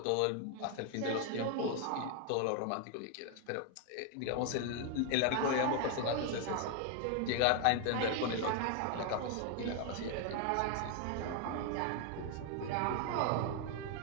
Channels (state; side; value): different; both; correlation 0.00